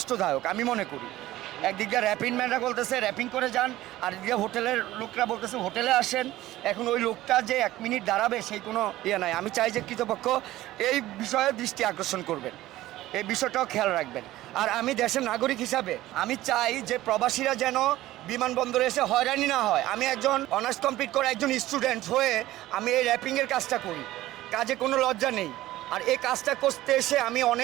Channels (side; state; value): left; quieter; 15.8 dB